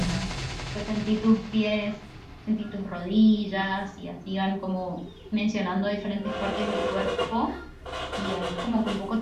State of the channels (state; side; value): identical; both; correlation 1.00